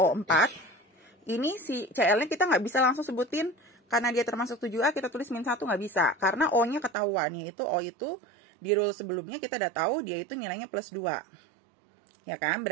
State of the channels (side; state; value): left; drops out; at 7.0 s